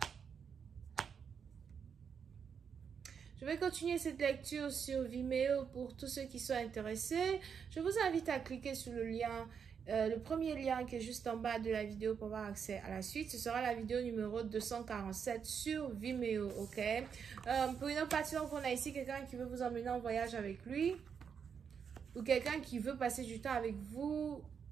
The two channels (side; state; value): left; quieter; 6.9 dB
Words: Je vais continuer cette lecture sur Vimeo pour tous ceux qui sont intéressés. Je vous invite à cliquer sur le lien, le premier lien qui est juste en bas de la vidéo pour avoir accès à la suite. Ce sera la vidéo numéro 247 sur Vimeo, ok? Pour une autre partie, on a ici quelqu'un qui veut vous emmener en voyage avec lui ou quelqu'un qui veut passer du temps avec vous